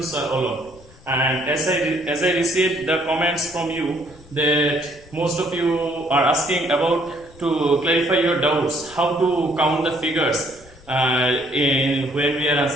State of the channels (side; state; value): left; noise; rumble, 24 dB below the sound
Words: Sir Olom. And as I received the comments from you that most of you are asking about to clarify your doubts, how to count the figures when we are